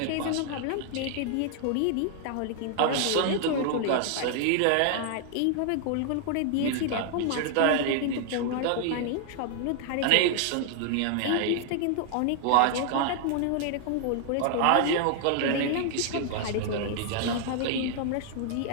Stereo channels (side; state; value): both; different; correlation -0.01